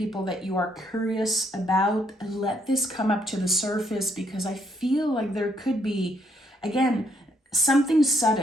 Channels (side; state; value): both; normal; correlation 0.72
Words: that you are curious about. Let this come up to the surface, because I feel like there could be, again, something